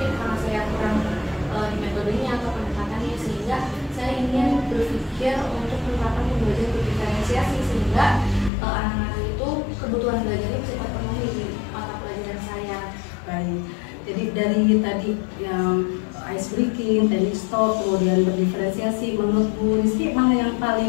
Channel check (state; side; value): drops out; right; at 8.5 s